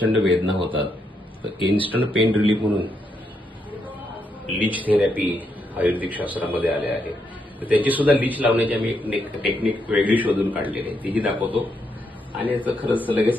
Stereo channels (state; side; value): normal; both; correlation 0.79